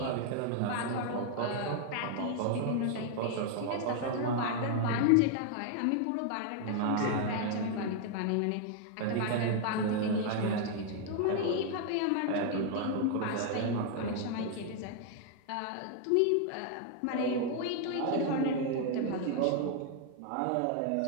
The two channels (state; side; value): different; both; correlation 0.00